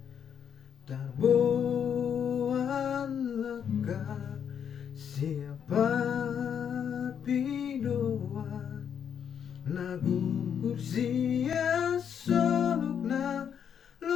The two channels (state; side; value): quieter; right; 8.1 dB